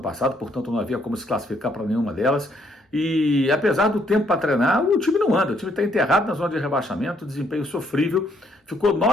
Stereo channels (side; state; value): both; normal; correlation 0.70